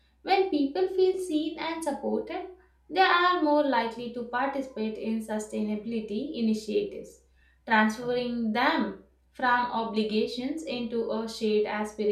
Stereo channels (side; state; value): both; identical; correlation 1.00